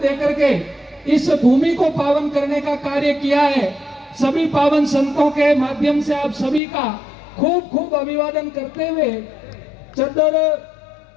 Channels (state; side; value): drops out; right; at 6.6 s